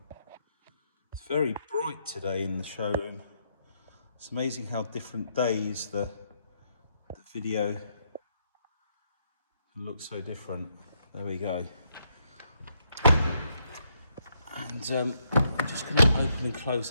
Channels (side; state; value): both; inverted; correlation -0.76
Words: it's very bright today in the showroom. It's amazing how different days the video can look so different. There we go. And I'm just going to open and close